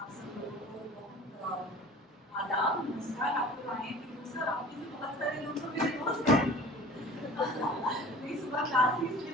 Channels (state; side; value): normal; both; correlation 0.43